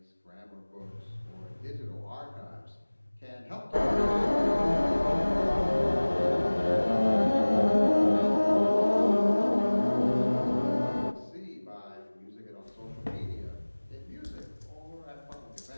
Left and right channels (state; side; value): inverted; both; correlation -1.00